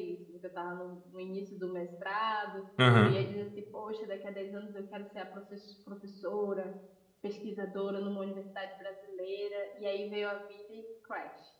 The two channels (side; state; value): both; identical; correlation 1.00